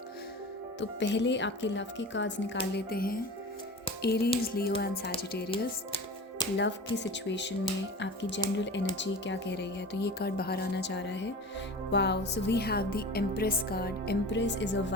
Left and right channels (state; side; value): normal; both; correlation 0.35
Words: तो पहले आपके लव की कार्ड्स निकाल लेते हैं। Aries, Leo and Sagittarius, love की सिचुएशन में आपकी जनरल एनर्जी क्या कह रही है। तो ये कार्ड बाहर आना चाह रहा है। Wow, so we have the empress card. Empress is a